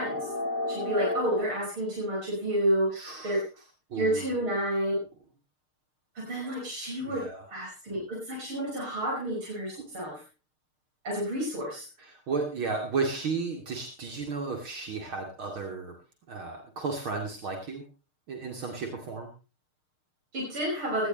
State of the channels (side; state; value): left; late; 6.5 ms